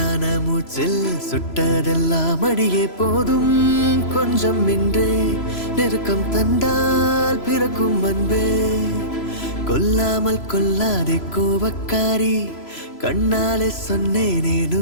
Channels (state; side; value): late; right; 3.0 ms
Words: மூச்சில் சுட்டதெல்லாம் அடியே போதும். கொஞ்சம் இன்றே நெருக்கம் தந்தால் பிறக்கும் அன்பே. கொல்லாமல் கொல்லாதே கோபக்காரி, கண்ணாலே சொன்னேனே